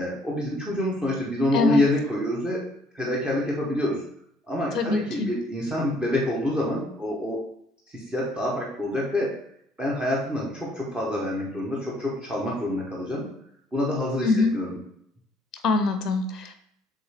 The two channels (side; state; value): both; normal; correlation 0.65